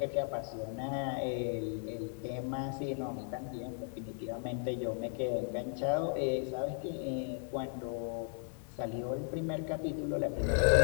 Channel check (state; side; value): silent; right; 54 dB below the other